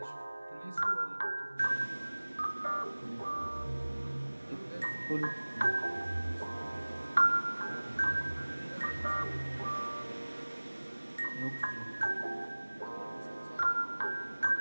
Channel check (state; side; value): inverted; both; correlation -1.00